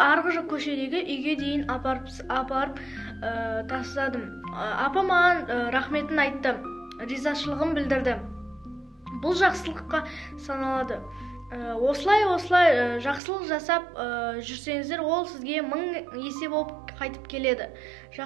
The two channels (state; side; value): drops out; left; at 13.2 s